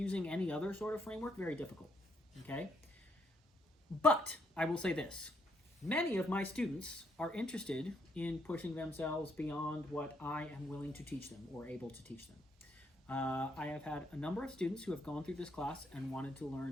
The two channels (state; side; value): normal; both; correlation 0.74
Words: any other sort of framework very difficult. Okay? But I will say this. Many of my students are interested in pushing themselves beyond what I am willing to teach them or able to teach them. I have had a number of students who have gone through this class and wanted to